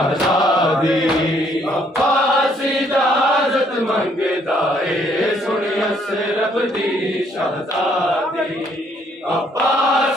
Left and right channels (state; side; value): normal; both; correlation 0.67